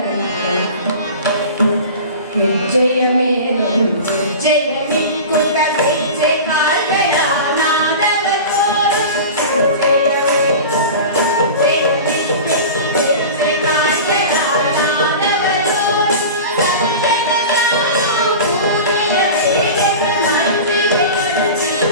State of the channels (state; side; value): inverted; both; correlation -0.33